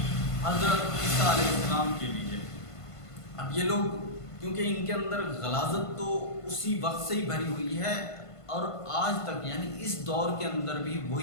حضرت عیسیٰ علیہ السلام کے لیے۔ اب یہ لوگ کیونکہ ان کے اندر غلاظت تو اسی وقت سے ہی بھری ہوئی ہے اور آج تک، یعنی اس دور کے اندر بھی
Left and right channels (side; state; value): right; late; 1.5 ms